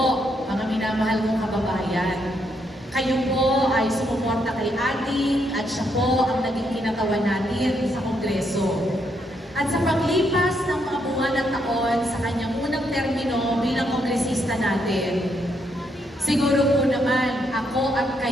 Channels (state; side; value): normal; both; correlation 0.76